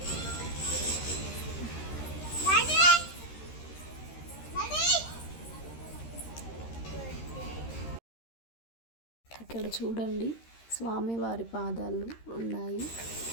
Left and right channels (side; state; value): right; late; 13 ms